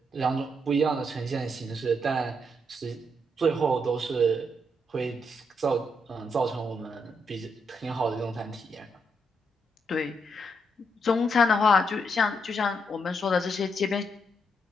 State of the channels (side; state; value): both; normal; correlation 0.78